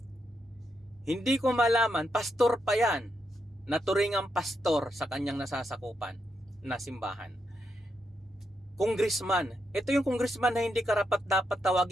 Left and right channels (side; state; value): both; normal; correlation 0.82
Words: Hindi ko malaman, pastor pa yan, naturingang pastor sa kanyang nasasakupan na simbahan. Congressman. Ito yung congressman na hindi karapat dapat